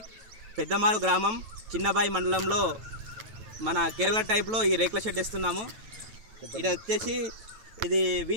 Peddamaru ग्रामं चिन्नबाई मंडలంలో మన కేరళ టైప్ లో ఈ రేకుల షెడ్ ఇస్తున్నాము। ఇది వచ్చేసి ఇది వి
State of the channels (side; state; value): left; late; 9.1 ms